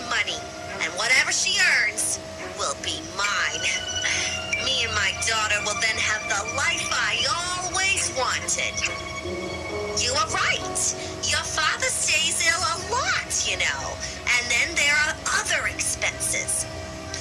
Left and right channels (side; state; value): both; identical; correlation 1.00